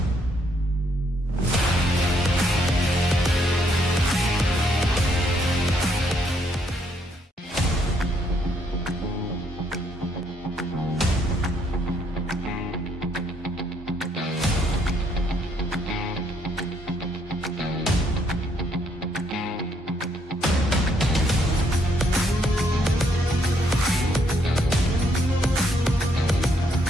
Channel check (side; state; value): both; normal; correlation 0.71